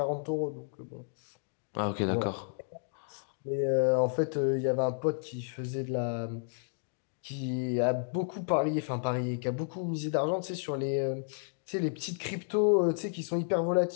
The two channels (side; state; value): right; silent; digital silence